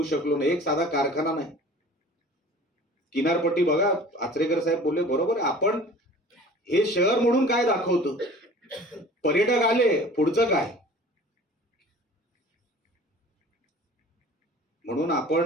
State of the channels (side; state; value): both; normal; correlation 0.44